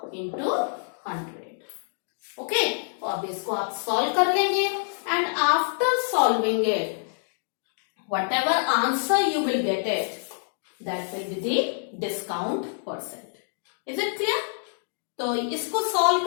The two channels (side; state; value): right; silent; digital silence